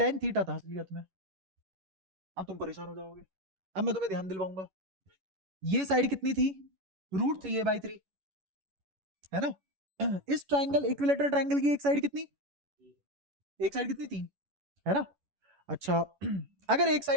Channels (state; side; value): late; left; 11 ms